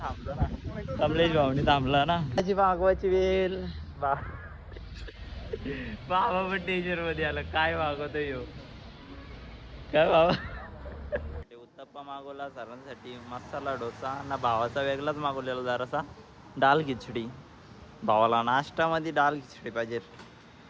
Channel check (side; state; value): both; identical; correlation 1.00